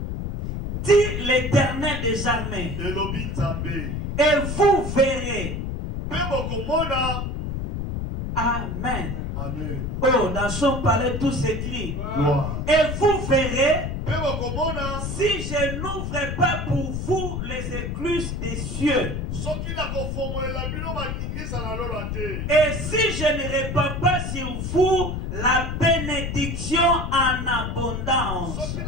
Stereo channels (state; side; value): noise; left; rumble, 4 dB below the sound